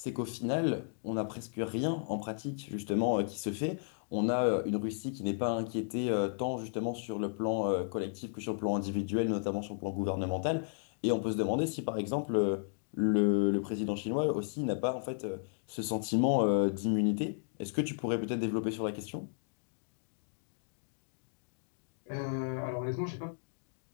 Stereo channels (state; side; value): silent; right; digital silence